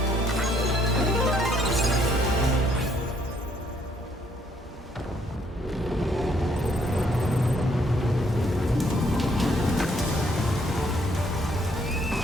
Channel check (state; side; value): normal; both; correlation 0.68